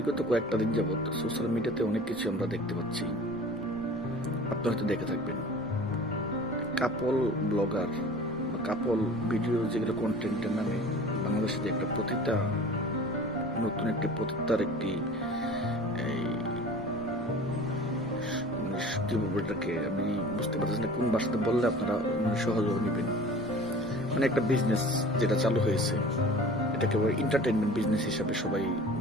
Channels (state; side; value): normal; both; correlation 0.42